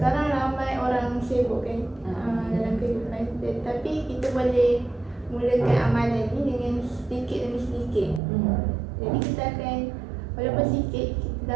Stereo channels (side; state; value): left; drops out; at 8.2 s